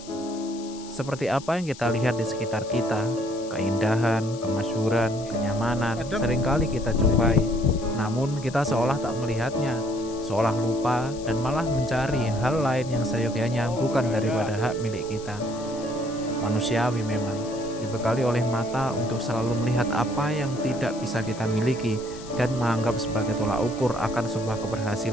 Seperti apa yang kita lihat di sekitar kita, keindahan, kemasyhuran, kenyamanan, Adem. seringkali kita jumpai. Namun kita seolah tak melihatnya, seolah lupa dan malah mencari hal lain yang seyogyanya bukan daripada hak milik kita. Manusiawi memang, dibekali oleh mata untuk selalu melihat apa yang tidak bisa kita miliki dan menganggap sebagai tolak ukur akan sebuah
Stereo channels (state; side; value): noise; left; hiss, 17 dB below the sound